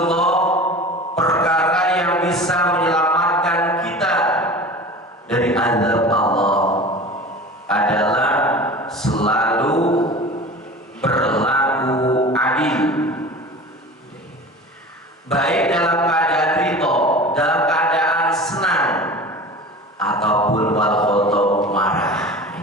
perkara yang bisa menyelamatkan kita dari azab Allah adalah selalu berlaku adil, baik dalam keadaan ridho, dalam keadaan senang, ataupun wal ghadab, marah.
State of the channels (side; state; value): both; normal; correlation 0.37